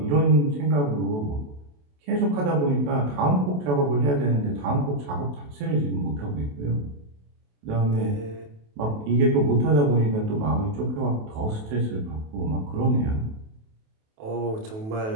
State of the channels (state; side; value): late; left; 28 ms